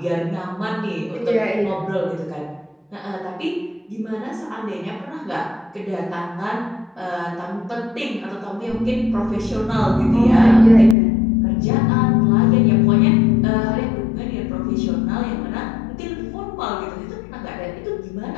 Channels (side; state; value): right; drops out; at 11.0 s